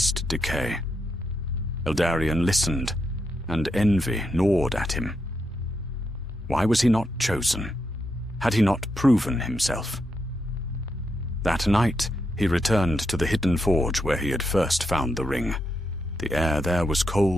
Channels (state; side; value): normal; both; correlation 0.82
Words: decay. Eldarion listened, and envy gnawed at him. Why was he not chosen? Had he not proven himself? That night, he returned to the hidden forge where he had first found the ring. The air there was